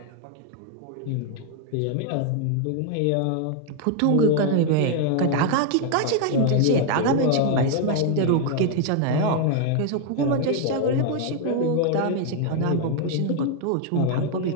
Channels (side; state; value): both; different; correlation 0.00